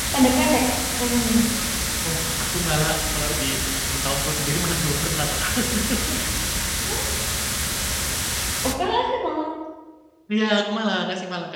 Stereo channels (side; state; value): both; identical; correlation 1.00